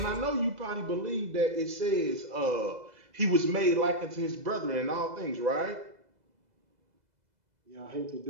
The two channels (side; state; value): left; late; 2.0 ms